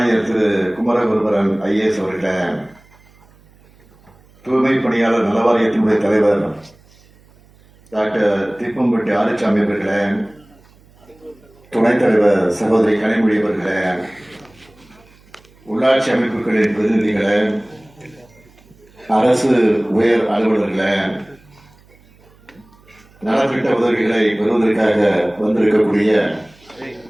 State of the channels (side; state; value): right; noise; hum, 29 dB below the sound